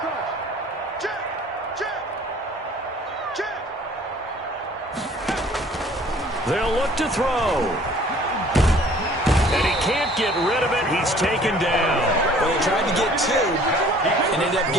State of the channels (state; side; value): normal; both; correlation 0.53